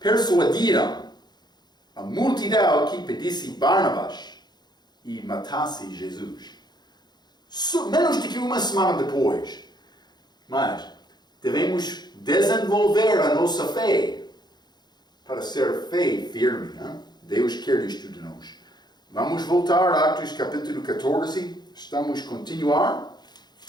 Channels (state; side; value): late; right; 0.20 ms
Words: a multidão que pedisse Barnabas e matasse Jesus. Menos do que uma semana depois. Mas devemos desenvolver a nossa fé para ser fé firme. Hein? Deus quer isto de nós. Vamos voltar a Atos capítulo 14. Estamos a continuar.